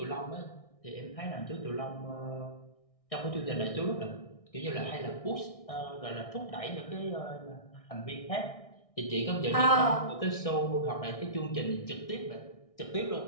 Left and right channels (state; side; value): late; right; 1.6 ms